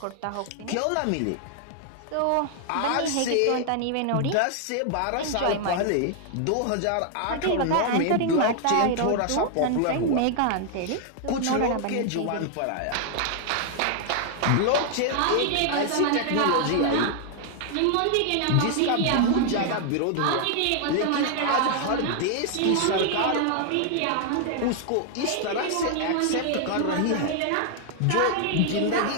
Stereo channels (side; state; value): both; different; correlation 0.00